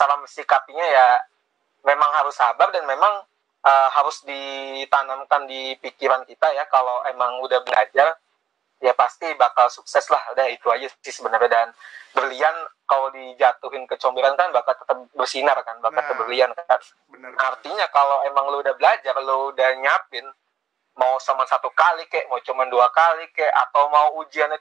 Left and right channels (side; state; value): left; quieter; 9.1 dB